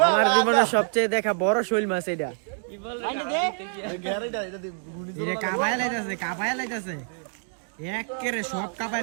আমার জীবনের সবচেয়ে দেখা বড় শৈল মাছ এটা। এটা কাবাই লাইতাছে একেরে সব কাবাই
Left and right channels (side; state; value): left; silent; 61 dB below the other